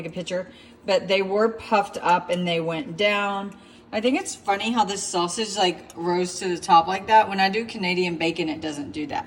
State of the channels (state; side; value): identical; both; correlation 1.00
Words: a picture, but they were puffed up and they went down. I think it's funny how this sausage like rose to the top like that. When I do Canadian bacon, it doesn't do